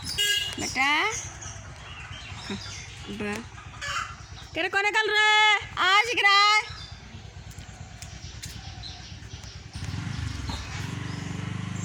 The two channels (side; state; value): both; identical; correlation 1.00